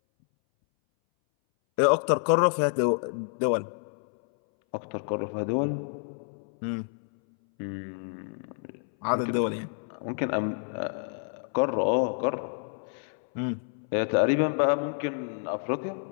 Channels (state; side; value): silent; right; 59 dB below the other